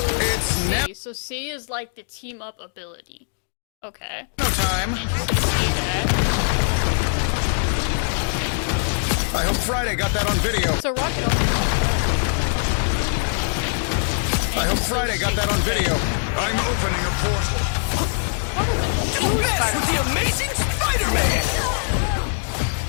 was C. So C is like the team up ability. Okay. No time. Interesting to see that. I hope Friday got that on video. So Rocket also I hope Friday got that on video. I'm opening a portal. Don't mess with the Amazing Spider-Man!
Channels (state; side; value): silent; right; digital silence